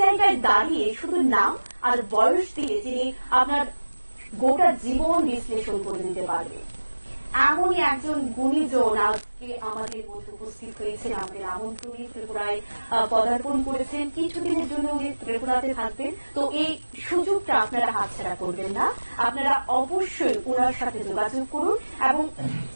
জায়গায় দাঁড়িয়ে শুধু নাম আর বয়স দিয়ে যিনি আপনার গোটা জীবন বিশ্লেষণ করে দিতে পারবে এমনই একজন গুণীজন আজকে আমাদের মধ্যে উপস্থিত হয়েছেন। আমাদের আমন্ত্রণে ত্রিপুরায় পদার্পণ করেছেন। কিছুদিনের জন্য উনি ত্রিপুরাতে থাকবেন। তো এই সুযোগটা আপনারা হাতছাড়া করবেন না। আপনারা অবশ্যই ওনার সাথে যোগাযোগ করুন এবং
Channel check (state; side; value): inverted; both; correlation -1.00